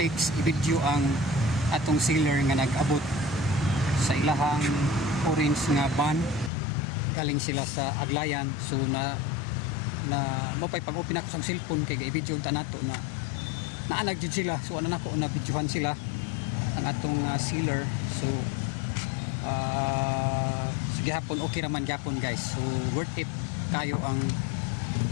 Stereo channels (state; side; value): drops out; right; at 6.5 s